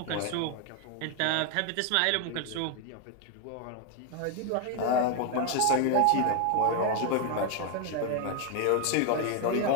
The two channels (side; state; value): both; different; correlation 0.01